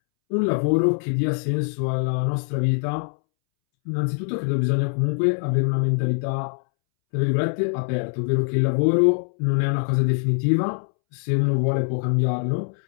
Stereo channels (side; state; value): right; silent; 64 dB below the other